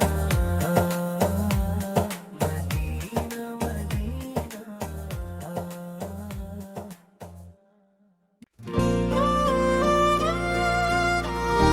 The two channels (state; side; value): identical; both; correlation 1.00